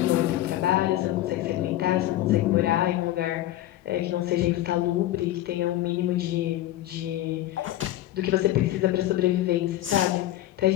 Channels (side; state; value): right; quieter; 14.5 dB